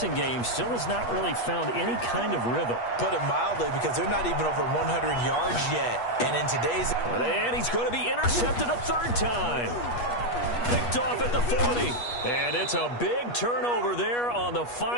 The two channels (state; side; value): late; right; 8.3 ms